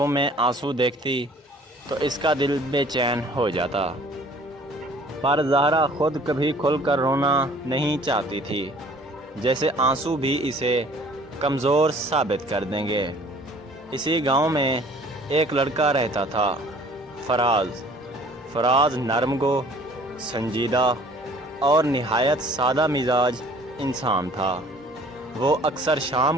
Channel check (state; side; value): normal; both; correlation 0.53